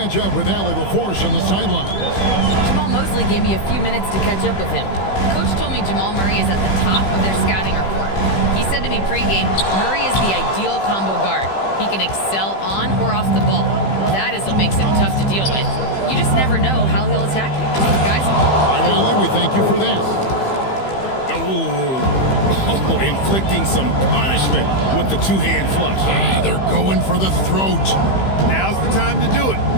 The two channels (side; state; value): right; late; 15 ms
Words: up with Allie LaForce on the sideline. Jamal Mosley gave me a few minutes to catch up with him. Coach told me Jamal Murray is at the top of their scouting report. He said to me pregame, Murray is the ideal combo guard. He can excel on or off the ball. That is what makes him tough to deal with. You just never know how he'll attack you. Guys? All right, Allie, we thank you for that. Oh, inflicting some punishment with the two-hand flush. They're going for the throat. Now's the time to do it.